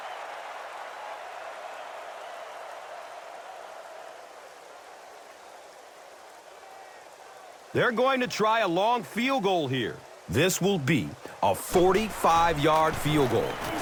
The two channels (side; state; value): both; identical; correlation 1.00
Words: They're going to try a long field goal here. This will be a 45-yard field goal.